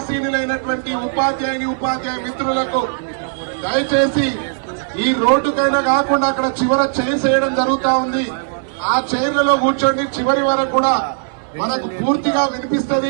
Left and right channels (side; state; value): left; silent; 64 dB below the other